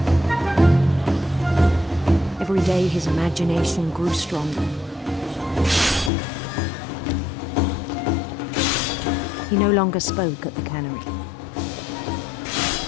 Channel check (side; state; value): right; drops out; at 6.1 s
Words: Every day his imagination grew stronger. He no longer spoke at the cannery.